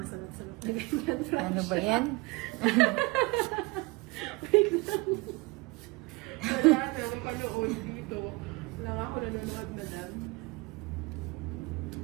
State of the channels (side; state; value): left; quieter; 24.4 dB